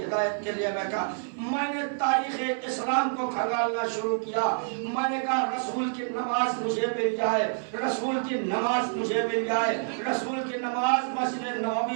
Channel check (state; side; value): silent; left; 58 dB below the other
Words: ہدایت کے لیے بیٹھا. میں نے تاریخ اسلام کو کھنگالنا شروع کیا. میں نے کہا رسول کی نماز مجھے مل جائے, رسول کی نماز مجھے مل جائے, رسول کی نماز مسجد